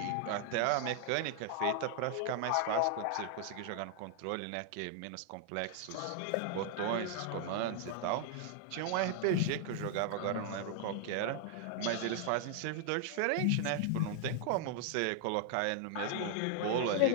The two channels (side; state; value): both; different; correlation 0.00